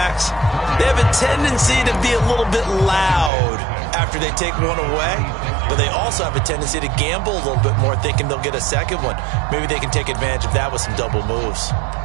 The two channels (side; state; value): left; drops out; at 3.3 s